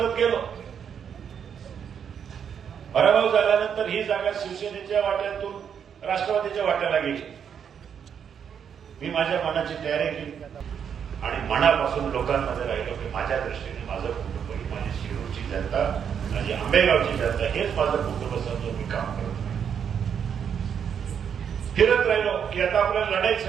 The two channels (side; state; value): left; quieter; 7.8 dB